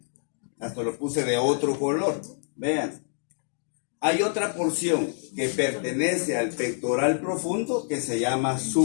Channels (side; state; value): right; silent; digital silence